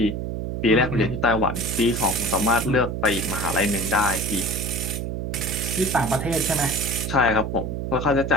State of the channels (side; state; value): right; noise; hum, 3 dB below the sound